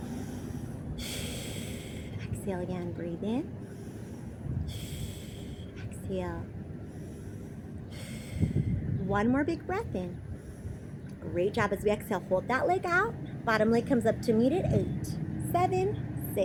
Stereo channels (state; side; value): identical; both; correlation 1.00